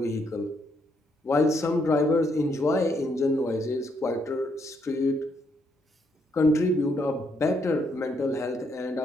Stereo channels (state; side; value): normal; both; correlation 0.74